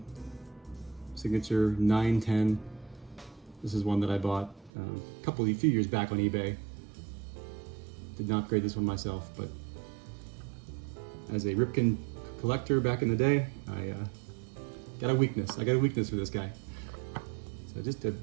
signature 910. This is one that I bought a few years back on eBay. Did not grade this one myself, but as a Ripken collector back in the day, I got a weakness. I got a weakness for this guy. So just a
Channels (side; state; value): left; drops out; at 4.7 s